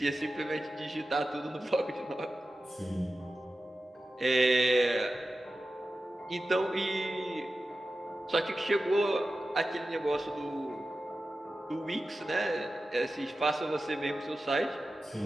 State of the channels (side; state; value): both; normal; correlation 0.93